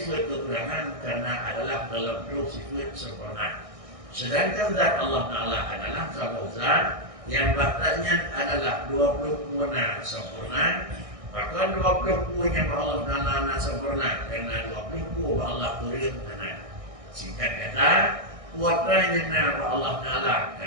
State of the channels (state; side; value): late; left; 1.6 ms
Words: kekurangan karena adalah dalam bentuk sifat sempurna. Sedangkan zat Allah Ta'ala adalah satu zat yang baktanya adalah 20 puana sempurna. Bahkan 20 yang Allah Ta'ala sempurna karena 20 Allah kurim hana. Singkat kata, kuatranya Allah Ta'ala